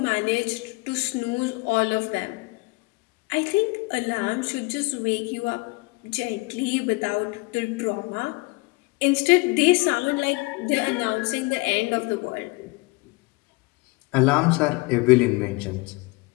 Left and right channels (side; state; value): right; quieter; 25.5 dB